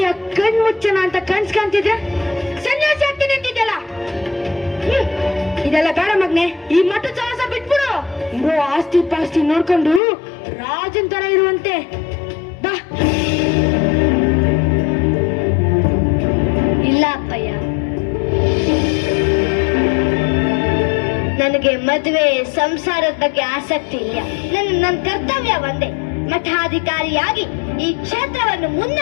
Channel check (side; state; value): right; drops out; at 10.0 s